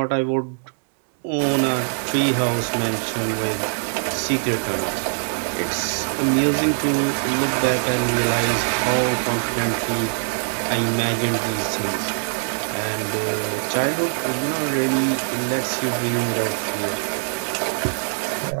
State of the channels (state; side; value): silent; left; digital silence